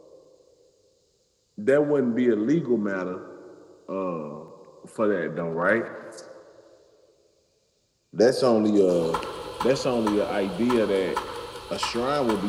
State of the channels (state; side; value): identical; both; correlation 1.00